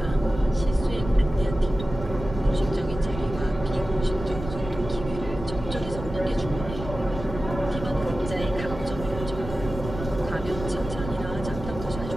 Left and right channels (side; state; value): right; noise; rumble, 9 dB below the sound